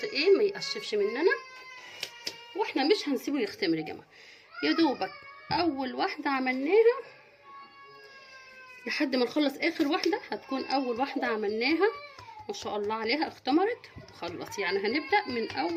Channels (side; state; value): both; identical; correlation 1.00